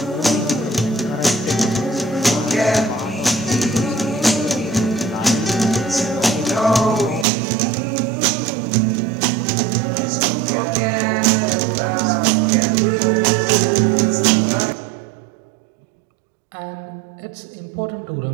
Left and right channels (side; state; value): left; drops out; at 7.2 s